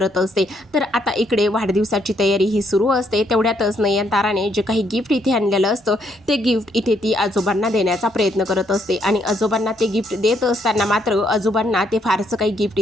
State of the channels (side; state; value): both; normal; correlation 0.72